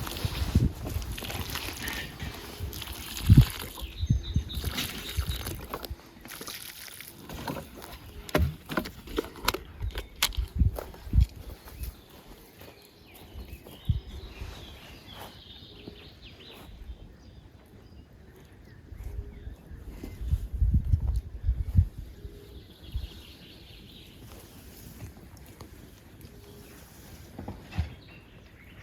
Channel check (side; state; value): both; identical; correlation 1.00